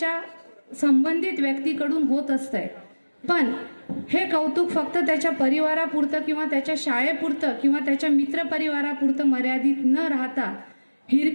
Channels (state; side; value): inverted; both; correlation -1.00